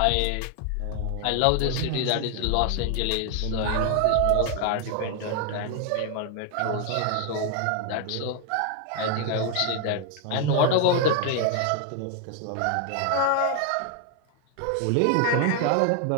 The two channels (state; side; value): different; both; correlation 0.01